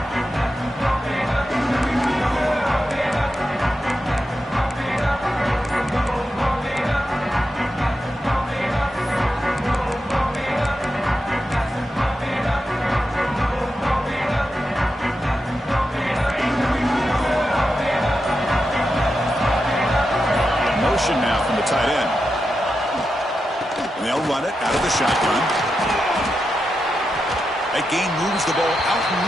Now from the tight end. And they'll run it out of the shotgun. That gain moves the ball out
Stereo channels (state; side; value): normal; both; correlation 0.88